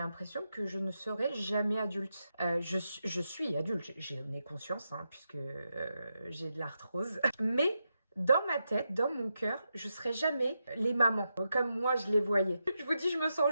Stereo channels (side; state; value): both; inverted; correlation -0.86